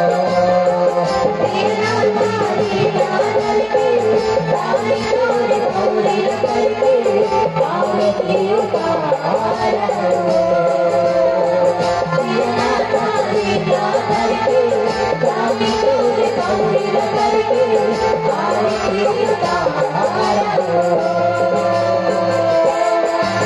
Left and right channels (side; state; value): both; identical; correlation 1.00